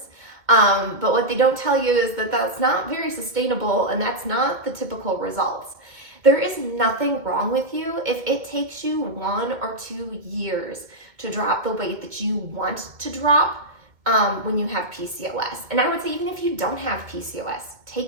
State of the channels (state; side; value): late; left; 2.2 ms